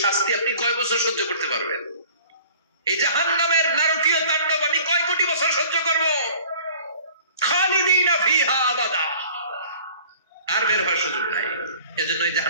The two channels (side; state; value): both; inverted; correlation -0.49